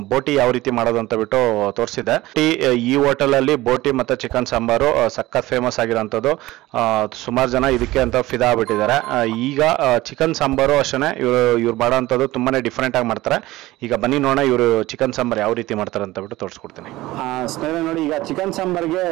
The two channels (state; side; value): quieter; left; 17.9 dB